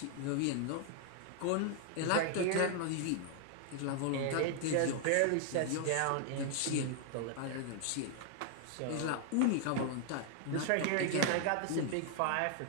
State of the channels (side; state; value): both; different; correlation 0.00